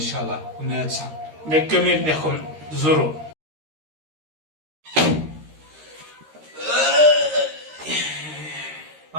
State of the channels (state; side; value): late; left; 13 ms